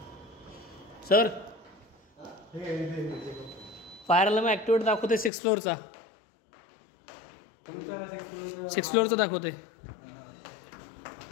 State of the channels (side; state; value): right; drops out; at 5.3 s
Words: सर. फायर अलार्म ऍक्टिवेट दाखवते 6th फ्लोअरचा. 6th फ्लोअरचा दाखवते.